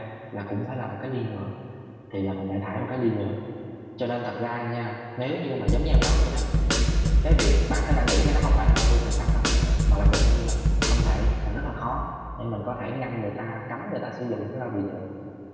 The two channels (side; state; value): both; identical; correlation 1.00